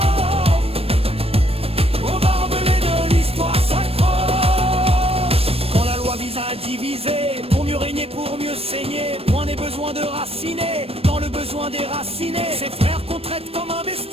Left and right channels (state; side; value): late; left; 0.28 ms